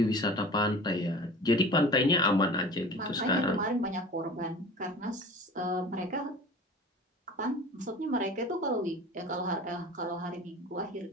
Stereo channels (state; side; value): normal; both; correlation 0.40